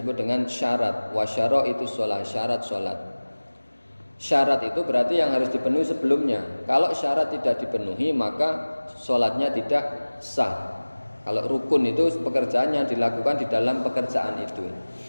dengan syarat. Wa syaraitu sholat, syarat sholat. Syarat itu berarti yang harus dipenuhi sebelumnya. Kalau syarat tidak dipenuhi maka sholatnya tidak sah. Kalau rukun itu pekerjaan yang dilakukan di dalam pekerjaan itu.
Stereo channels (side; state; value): both; inverted; correlation -1.00